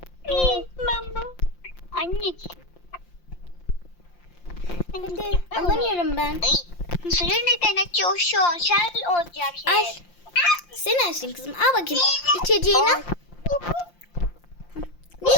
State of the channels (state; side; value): late; right; 5.7 ms